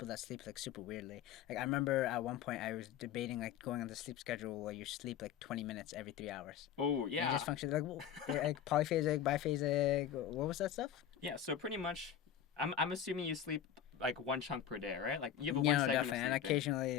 that sleep like super weirdly. Like I remember at one point I was debating like going on the sleep schedule where you sleep like 20 minutes every 3 hours. Oh And you yeah. just function like like polyphasic, biphasic. What was that stuff? Yeah, so pretty much, I'm assuming you sleep like one chunk per day, right? Like you have a You one know, segment of definitely, and sleeping.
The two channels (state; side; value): quieter; right; 9.3 dB